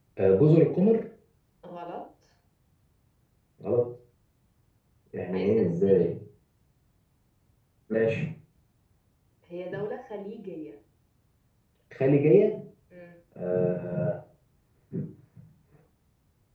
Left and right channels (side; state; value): both; identical; correlation 1.00